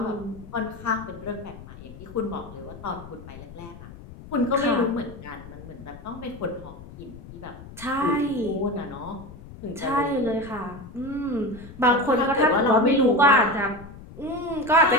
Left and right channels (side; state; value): left; noise; rumble, 16 dB below the sound